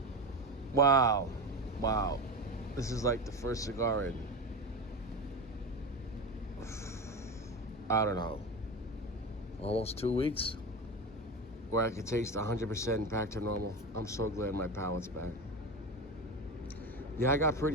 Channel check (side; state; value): both; normal; correlation 0.23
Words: Wow. This is like the first cigar in, I don't know, almost 2 weeks, where I could taste 100% back to normal. I'm so glad my palate's back. Yeah, I got